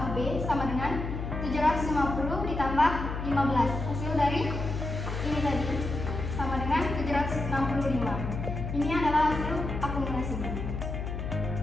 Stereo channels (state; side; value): noise; left; hum, 5 dB below the sound